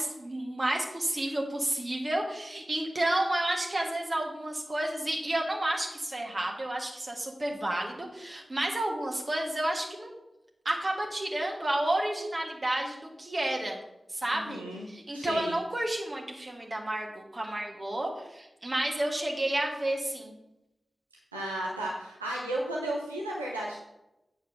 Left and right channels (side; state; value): both; normal; correlation 0.95